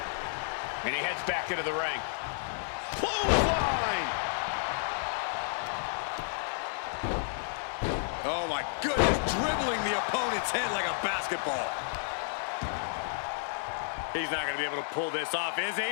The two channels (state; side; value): silent; right; digital silence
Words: And he heads back into the ring. Clothesline! Oh my goodness, dribbling the opponent's head like a basketball. He's not going to be able to pull this off, is he?